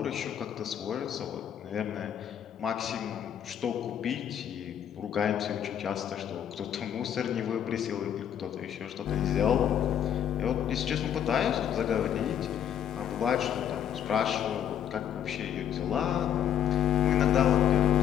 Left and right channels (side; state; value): right; quieter; 9.6 dB